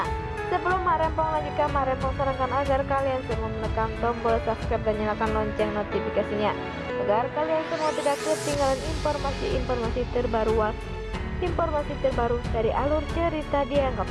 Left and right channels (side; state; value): both; identical; correlation 1.00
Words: sebelum Mak Rempong lanjutkan, Mak Rempong sarankan agar kalian semua menekan tombol subscribe dan nyalakan lonceng notifikasinya agar kalian semua tidak ketinggalan informasi terbaru dari alur cerita Dia Yang